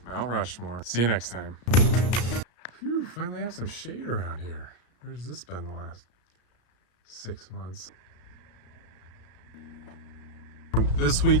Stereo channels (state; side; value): late; right; 34 ms